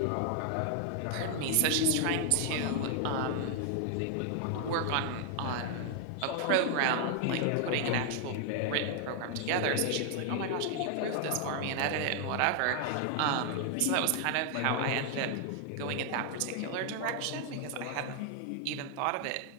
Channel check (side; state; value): both; different; correlation 0.00